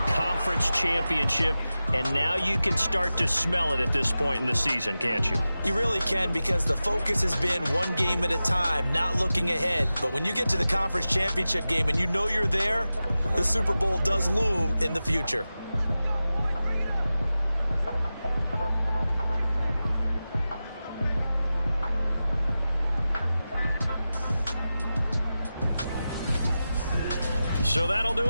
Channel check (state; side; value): inverted; both; correlation -0.94